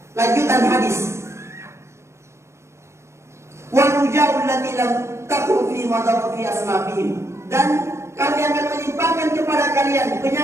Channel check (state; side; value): late; left; 0.13 ms